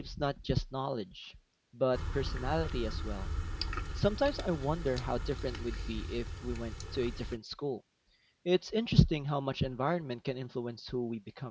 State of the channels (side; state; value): both; identical; correlation 1.00